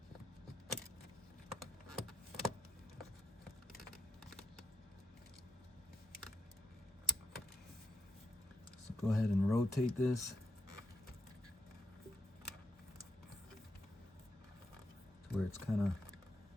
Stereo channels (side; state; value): both; normal; correlation 0.79